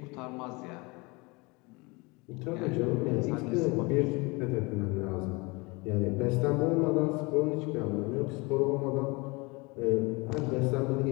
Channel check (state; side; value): quieter; right; 26.6 dB